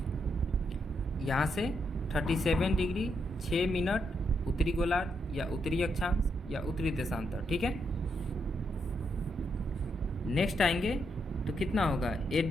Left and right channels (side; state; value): both; normal; correlation 0.80